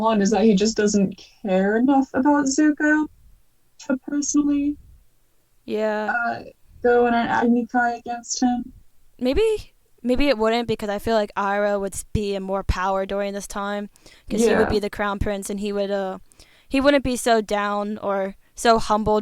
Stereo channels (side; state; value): both; identical; correlation 1.00